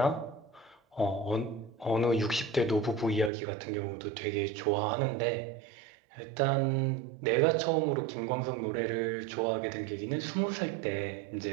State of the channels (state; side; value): drops out; left; at 3.3 s